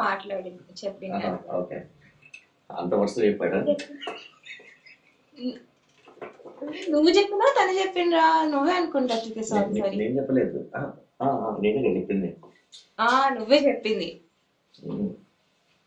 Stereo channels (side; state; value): both; identical; correlation 1.00